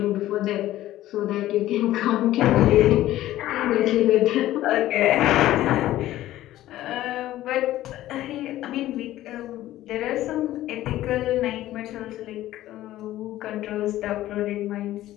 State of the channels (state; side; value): quieter; right; 14.6 dB